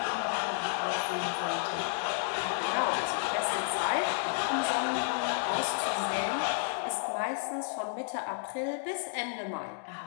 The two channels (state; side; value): silent; right; 57 dB below the other